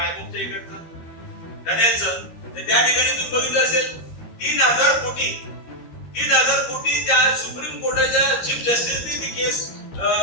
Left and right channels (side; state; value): right; late; 13 ms